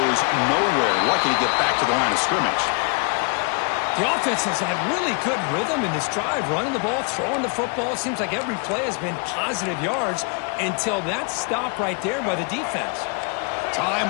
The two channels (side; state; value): right; quieter; 36.7 dB